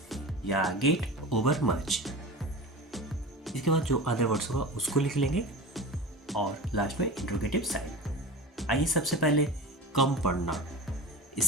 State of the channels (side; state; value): both; normal; correlation 0.31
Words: या गेट ओवर मच। इसके बाद जो अदर वर्ड्स होगा उसको लिख लेंगे और लास्ट में इंट्रोगेटिव साइन। आइए सबसे पहले कम पढ़ना